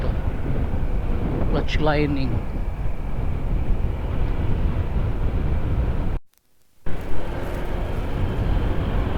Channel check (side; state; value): both; identical; correlation 1.00